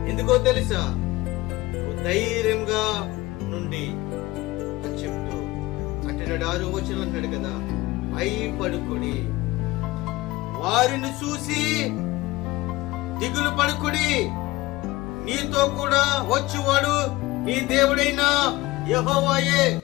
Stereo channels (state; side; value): quieter; right; 19.6 dB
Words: ఎందుకో తెలుసా? నువ్వు ధైర్యంగా నుండి అని చెప్తూ అంటున్నాడు. 6వ వచనం అన్నాడు కదా, భయపడుకుడి, వారిని చూసి దిగులు పడుకుడి, నీతో కూడా వచ్చేవాడు నీ దేవుడైన యెహోవాయే.